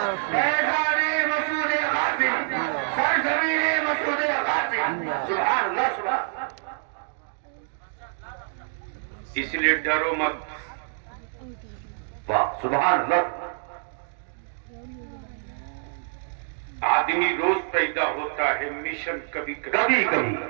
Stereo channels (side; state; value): left; silent; digital silence